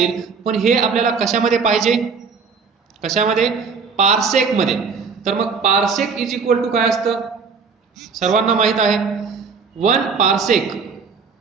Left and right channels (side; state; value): left; quieter; 5.3 dB